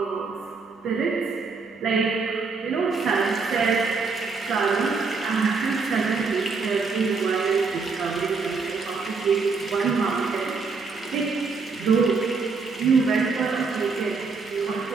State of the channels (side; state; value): left; quieter; 4.6 dB